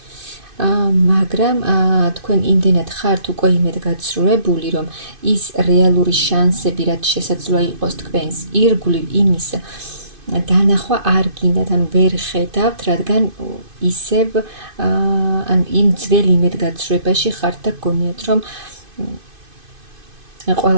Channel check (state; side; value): late; left; 2.5 ms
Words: მაგრამ თქვენ იმდენად ხართ უკვე იმედგაცრუებული, რომ ის რეალური შანსები, რაც შესაძლოა იყოს თქვენს ირგვლივ, იმის დანახვა არ გინდათ, ანუ ვერ ხედავთ, რადგან ისევ იმ ძველ იმედგაცრუებაში ხართ და გგონიათ, რომ